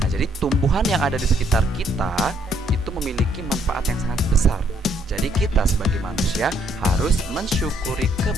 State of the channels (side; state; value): both; normal; correlation 0.70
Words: Nah, jadi tumbuhan yang ada di sekitar kita itu memiliki manfaat yang sangat besar. Jadi kita sebagai manusia harus mensyukuri